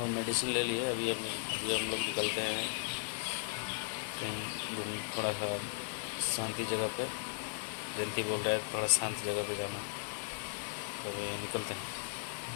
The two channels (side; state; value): right; silent; digital silence